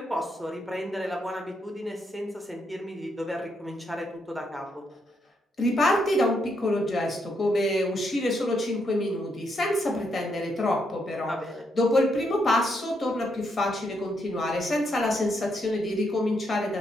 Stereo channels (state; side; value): normal; both; correlation 0.78